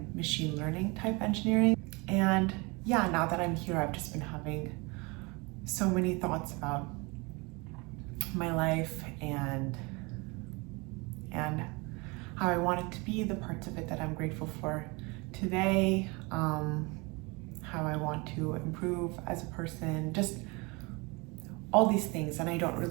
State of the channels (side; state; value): left; quieter; 27.3 dB